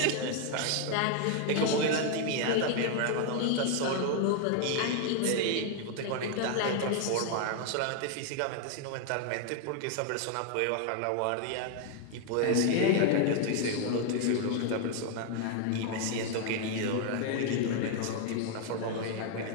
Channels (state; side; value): different; both; correlation 0.00